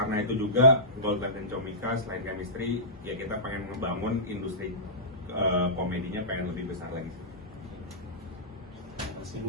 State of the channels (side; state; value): both; normal; correlation -0.19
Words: itu juga GoldLife dan Comika selain chemistry ya kita pengen membangun industri komedinya pengen lebih besar lagi.